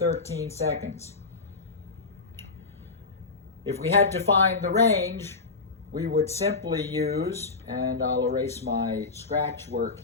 seconds. If we had to find the range, we would simply use, and I'll erase my scratch work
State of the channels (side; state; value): right; quieter; 4.1 dB